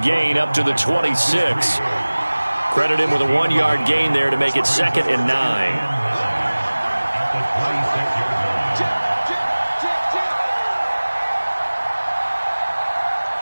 gain up to the 26. Credit him with a 1-yard gain there to make it 2nd and 9.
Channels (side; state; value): both; inverted; correlation -1.00